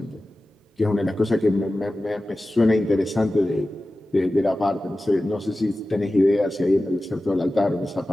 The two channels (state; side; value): normal; both; correlation 0.95